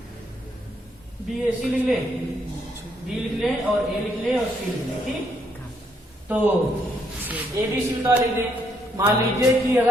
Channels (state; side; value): normal; both; correlation 0.73